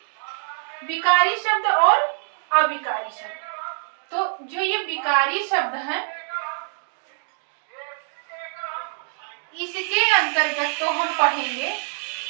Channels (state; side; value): silent; left; digital silence